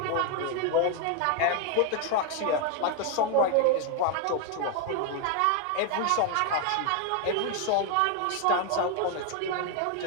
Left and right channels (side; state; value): both; different; correlation 0.01